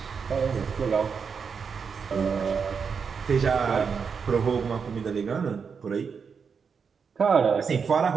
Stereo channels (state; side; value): quieter; left; 6.0 dB